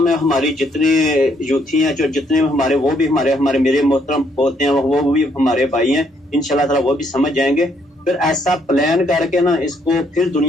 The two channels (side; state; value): both; normal; correlation 0.70